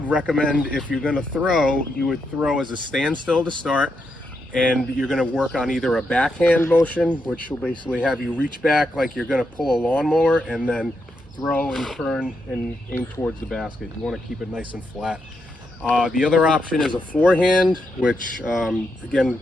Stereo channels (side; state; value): both; normal; correlation 0.82